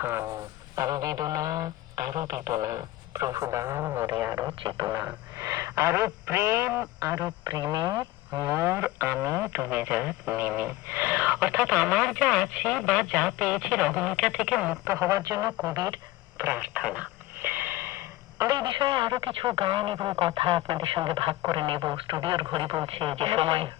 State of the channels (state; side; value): quieter; right; 17.3 dB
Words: আরো বেদনা আরো বেদনা, প্রভু দাও মোরে আরো চেতনা, আরো প্রেম আরো প্রেমে মোর আমি ডুবে যাক নেমে। অর্থাৎ আমার যা আছে বা যা পেয়েছি রহমিকা থেকে মুক্ত হওয়ার জন্য কবির প্রার্থনা। আমরা এই বিষয়ে আরো কিছু গান এবং কথা আপনাদের সঙ্গে ভাগ করে নেব। স্টুডিওর ঘড়ি বলছে যে সময়